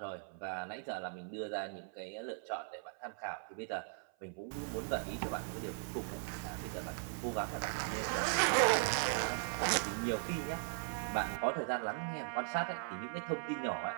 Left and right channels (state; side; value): silent; left; 52 dB below the other